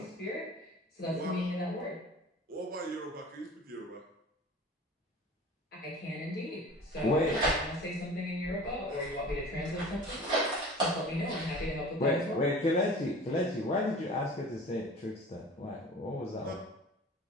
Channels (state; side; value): normal; both; correlation 0.42